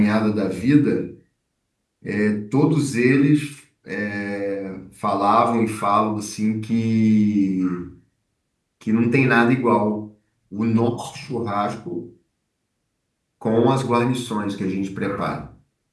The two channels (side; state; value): both; identical; correlation 1.00